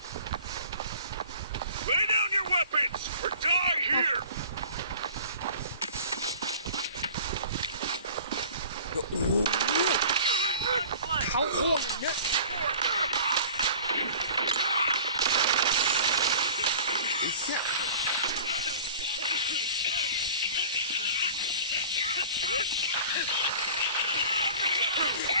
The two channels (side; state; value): both; inverted; correlation -0.43